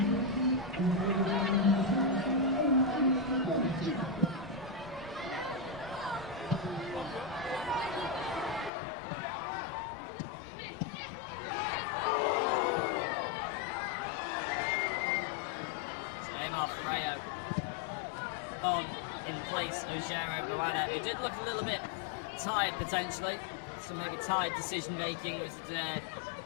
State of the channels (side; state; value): right; drops out; at 8.7 s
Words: On in place of Jeremy Moana. It did look a little bit tired potentially. Some maybe tired decision making was the